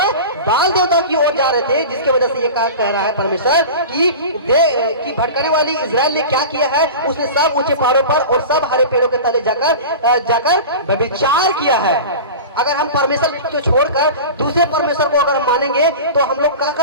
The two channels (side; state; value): both; inverted; correlation -0.32